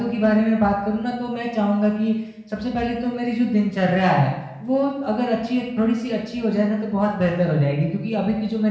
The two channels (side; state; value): both; identical; correlation 1.00